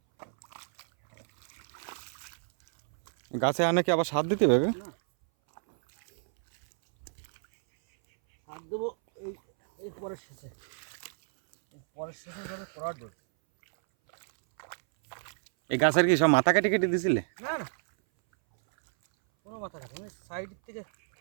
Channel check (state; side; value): silent; left; 58 dB below the other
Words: গাছে আনে কি আবার সার দিতে হবে? এই গাছের কি সব মাথা কেটে কেটে দিছিলে? না না, কোনো মাথা কাটে